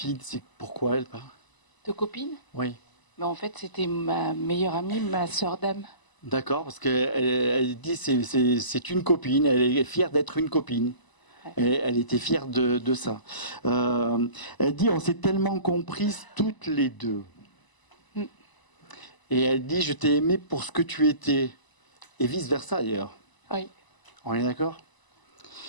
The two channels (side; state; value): right; late; 1.0 ms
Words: c'est pourquoi elle parle? De copine? Oui. Mais en fait, c'était ma meilleure amie, ma sœur d'âme. D'accord, parce qu'elle dit c'est une copine, elle est fière d'être une copine. Elle était fière de ça. Elle dit on s'est tellement comprises toutes les deux. Et elle dit je t'ai aimé pour ce que tu étais. Et vice-versa d'ailleurs. Oui. On est d'accord?